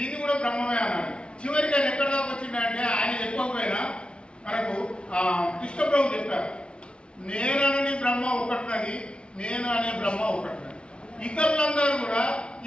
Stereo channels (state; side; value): late; right; 0.057 ms